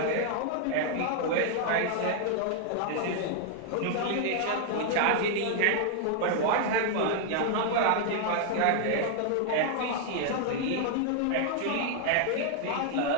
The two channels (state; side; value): different; both; correlation 0.00